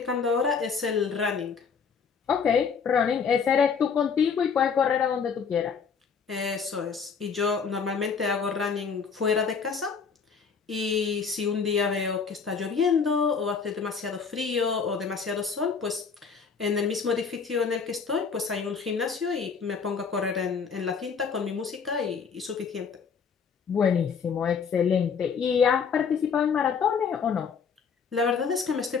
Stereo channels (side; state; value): right; quieter; 6.0 dB